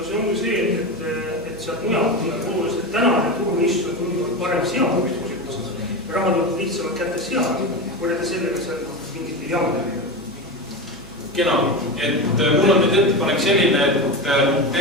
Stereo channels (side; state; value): right; noise; hum, 21 dB below the sound